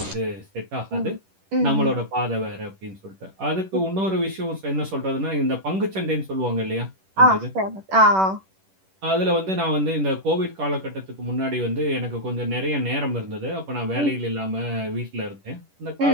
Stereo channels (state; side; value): late; left; 10 ms